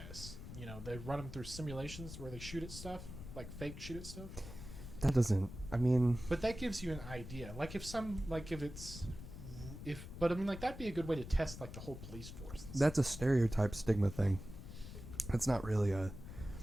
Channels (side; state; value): left; noise; rumble, 11 dB below the sound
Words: They run them through simulations where they shoot at stuff, like fake shoot at stuff. that doesn't. I mean, But that gives you an idea. But I mean, like, that'd be a good way to test, like, the whole police force. that's a stereotype stigma thing. That's not really a